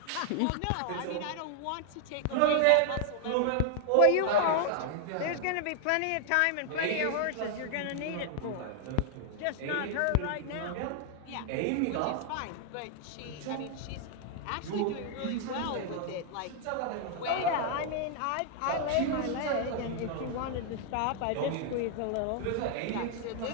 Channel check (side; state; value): both; different; correlation 0.00